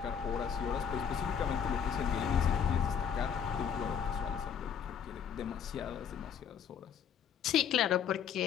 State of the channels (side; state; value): right; quieter; 7.8 dB